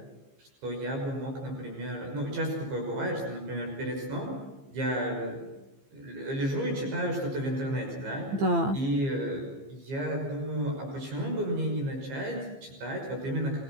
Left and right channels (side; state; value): left; late; 15 ms